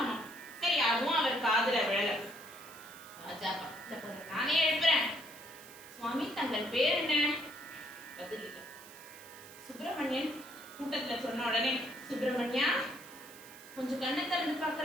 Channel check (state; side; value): noise; right; hiss, 18 dB below the sound